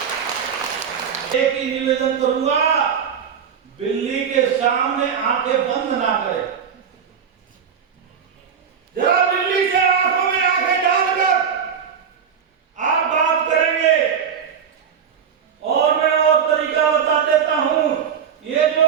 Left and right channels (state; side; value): quieter; left; 7.3 dB